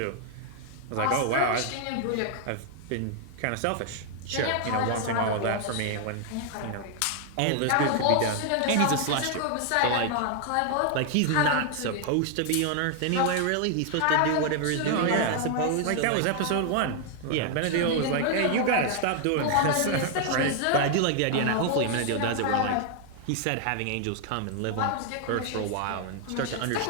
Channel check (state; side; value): different; both; correlation 0.00